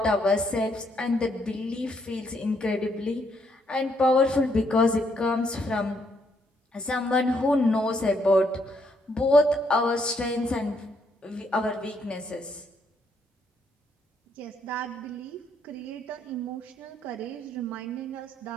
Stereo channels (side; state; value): both; normal; correlation 0.73